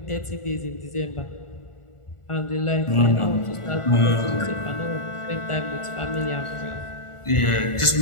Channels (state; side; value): late; right; 1.4 ms